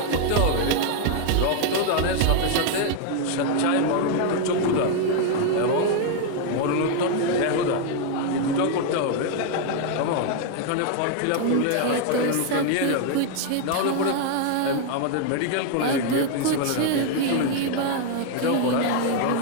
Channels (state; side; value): different; both; correlation 0.00